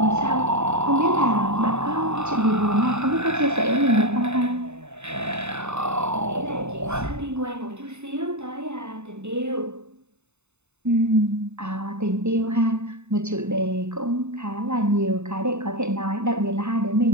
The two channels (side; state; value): left; late; 0.82 ms